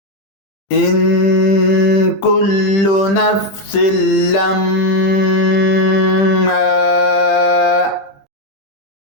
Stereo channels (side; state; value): right; late; 20 ms